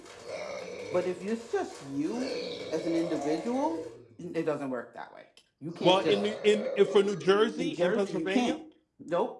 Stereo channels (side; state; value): both; identical; correlation 1.00